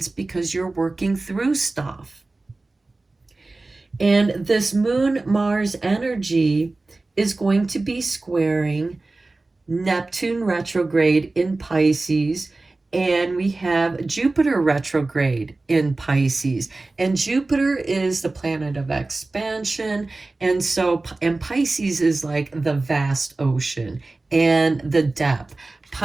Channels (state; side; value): quieter; left; 3.2 dB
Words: because you're working through stuff. And this Moon-Mars energy is going to be squaring Neptune retrograde in Pisces, and we have Jupiter retrograde in Pisces. And Jupiter is the planet of expansion, and Pisces is like the vast ocean and the depth.